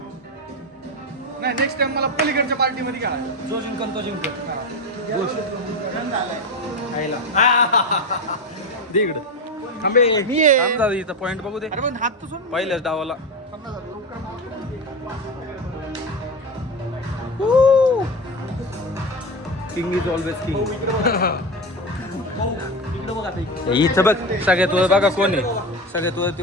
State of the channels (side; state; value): both; normal; correlation 0.20